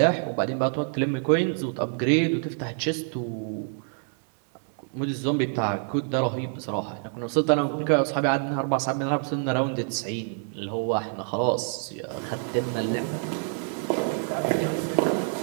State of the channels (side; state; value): left; silent; 60 dB below the other